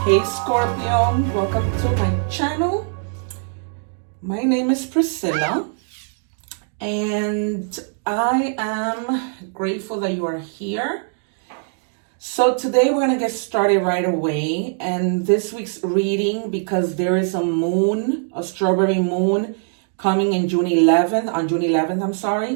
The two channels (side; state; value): left; silent; 58 dB below the other